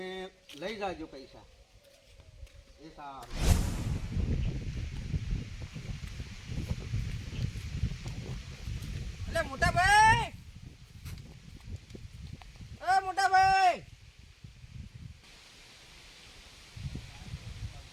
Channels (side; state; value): both; identical; correlation 1.00